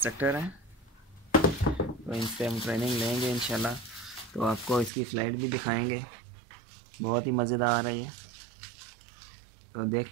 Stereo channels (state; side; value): drops out; left; at 4.9 s